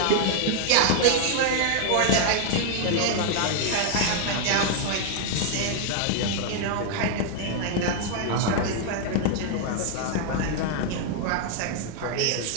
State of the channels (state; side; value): different; both; correlation 0.00